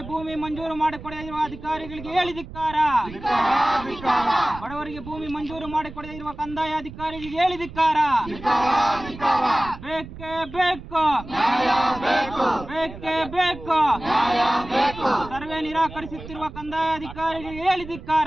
ಭೂಮಿ ಮಂಜೂರು ಮಾಡಿಕೊಡದೇ ಇರುವ ಅಧಿಕಾರಿಗಳಿಗೆ ಹೇಳಿ ಧಿಕ್ಕಾರ. ಬಡವರಿಗೆ ಭೂಮಿ ಮಂಜೂರು ಮಾಡಿಕೊಡದೇ ಇರುವ ಕಂದಾಯ ಅಧಿಕಾರಿಗಳಿಗೆ ಹೇಳಿ ಧಿಕ್ಕಾರ. ಬೇಕೇ ಬೇಕು, ಬೇಕೇ ಬೇಕು. ಸರ್ವೆ ನಿರಾಕರಿಸುತ್ತಿರುವ ಕಂದಾಯ ಅಧಿಕಾರಿಗಳಿಗೆ ಹೇಳಿ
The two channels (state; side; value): noise; right; rumble, 14 dB below the sound